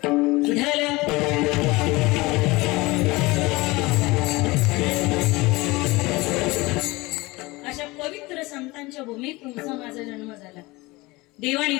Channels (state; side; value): quieter; right; 22.2 dB